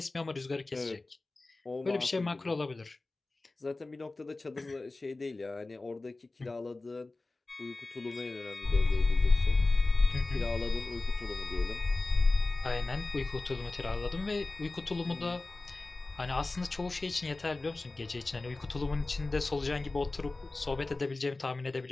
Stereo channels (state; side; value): quieter; right; 3.2 dB